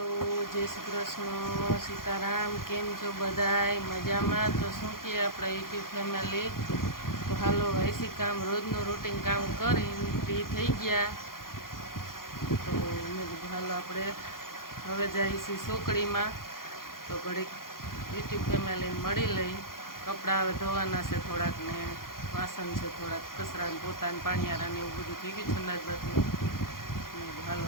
जय श्री कृष्ण सीताराम केम छो बधाय मजामां। तो शू कहे अपना यूट्यूब फैमिली तो हालो ऐसी काम रोजनु रूटीन काम करीने फ्री थई गया। तो मैं कीधुं हालो आपणे हवे जाईए सोकड़ी में तो घड़ीक यूट्यूब फैमिली मळी लई। कपड़ा हवे धोवाना छे थोड़ाक ने वासन छे थोड़ाक कचरा ने पोता ने पाणियारा ने एवुं बधुं थई गयुं छे अंदाजबातनुं।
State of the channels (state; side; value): late; right; 0.91 ms